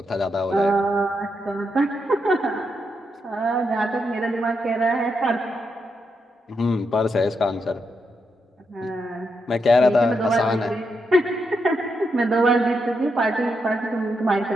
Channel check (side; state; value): both; normal; correlation 0.82